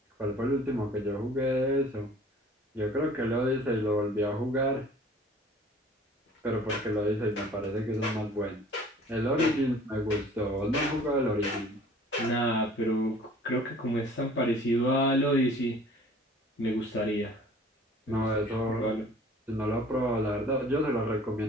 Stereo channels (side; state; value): both; normal; correlation 0.50